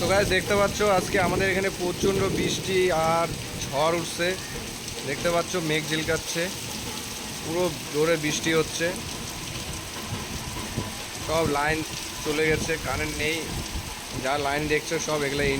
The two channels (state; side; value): identical; both; correlation 1.00